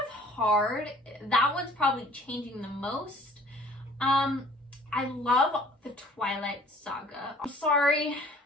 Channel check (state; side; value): normal; both; correlation 0.53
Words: of hard. That one's probably changing the most. I love the Twilight Saga. I'm sorry,